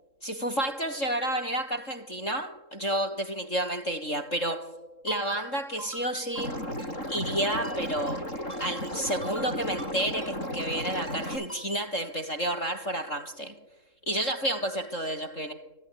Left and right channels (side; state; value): right; late; 3.7 ms